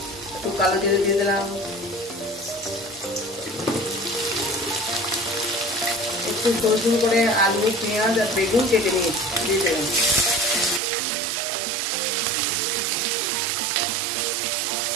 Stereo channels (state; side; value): drops out; left; at 10.8 s